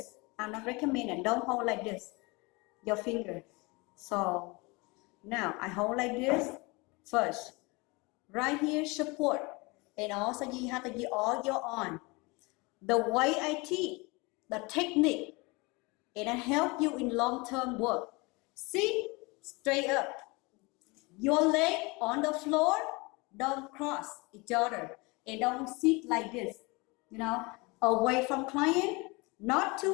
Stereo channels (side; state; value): right; quieter; 26.2 dB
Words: I'm not recommending. Don't hold like this. Your finger. So now I hold like this first. Right here, support. And also you have to use all your arm. The way I teach, the technique, and I help you in long-term work. See, straight up. Your leg on the floor, don't cross each other. And don't sit like this, away from client, not